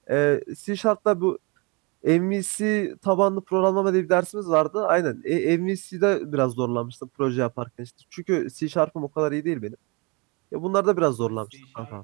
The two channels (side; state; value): left; quieter; 29.5 dB